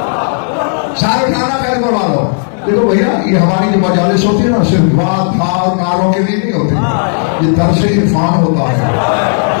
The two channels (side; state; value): right; silent; digital silence